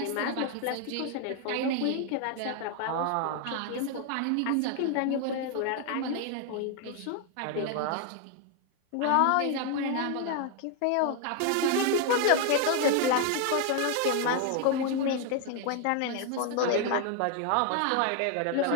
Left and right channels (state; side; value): different; both; correlation 0.01